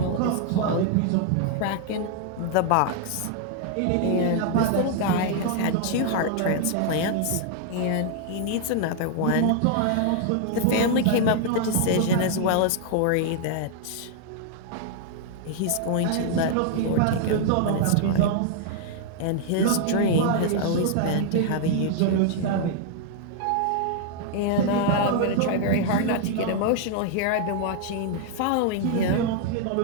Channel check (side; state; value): both; different; correlation 0.00